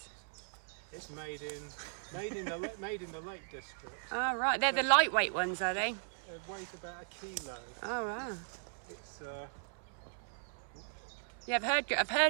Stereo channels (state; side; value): silent; left; 53 dB below the other